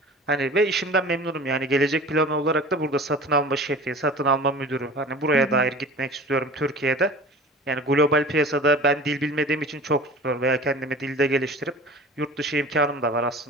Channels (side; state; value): both; normal; correlation 0.39